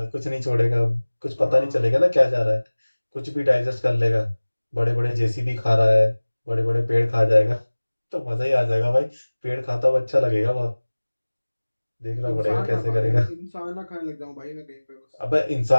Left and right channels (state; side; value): inverted; both; correlation -1.00